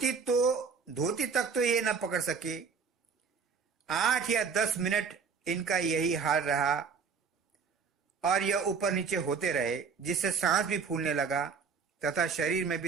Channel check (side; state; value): left; quieter; 5.6 dB